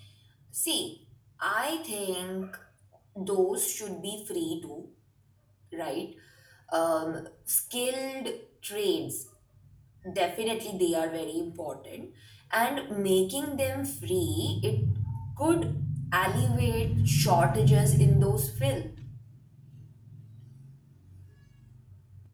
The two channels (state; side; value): identical; both; correlation 1.00